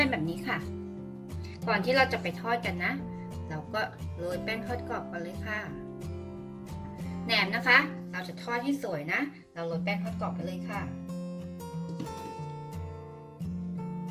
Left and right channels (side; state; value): both; identical; correlation 1.00